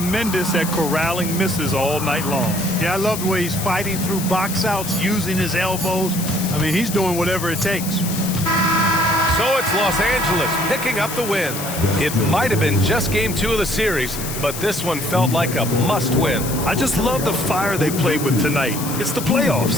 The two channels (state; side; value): noise; left; hiss, 8 dB below the sound